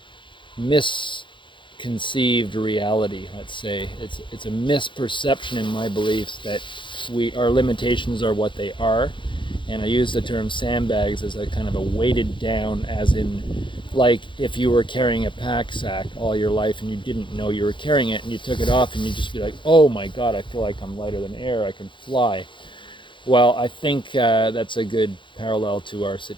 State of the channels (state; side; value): late; right; 0.23 ms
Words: misconceived reality. Let's say it's a misperception in my beliefs that our limitations are what they are, and I use the term sandbags as a kind of a weighted down, as in, like if you were carrying a pack sack all your life and you didn't know you were carrying it, and you took it off and you'd just be like, oh my god, I feel like I'm lighter than air, I can fly. Well, I think that's a good parallel to our